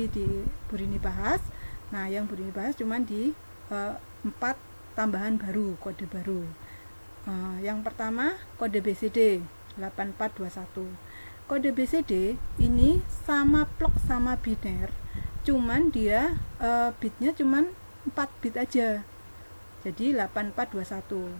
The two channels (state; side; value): inverted; both; correlation -1.00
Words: di Bu Rini bahas. Nah, yang Bu Rini bahas cuma di 4 tambahan baru, kode baru. Yang pertama kode BCD 8421. Kode BCD ini sama plok sama biner, cuman dia bitnya cuman 4 bit aja. Jadi 8421.